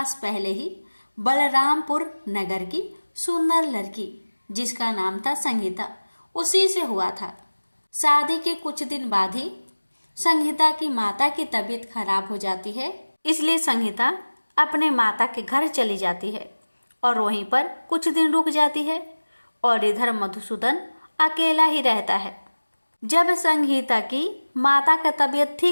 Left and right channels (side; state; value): both; inverted; correlation -1.00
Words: पहले ही बलरामपुर नगर की सुंदर लड़की जिसका नाम था संगीता, उसी से हुआ था। शादी के कुछ दिन बाद ही संगीता की माता की तबीयत खराब हो जाती है। इसलिए संगीता अपने माता के घर चली जाती है और वहीं पर कुछ दिन रुक जाती है और इधर मधुसूदन अकेला ही रहता है। जब संगीता की माता का तबीयत